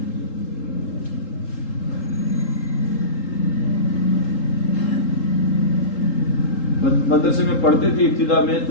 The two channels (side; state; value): right; late; 3.8 ms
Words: مدرسے میں پڑھتے تھے ابتدا میں،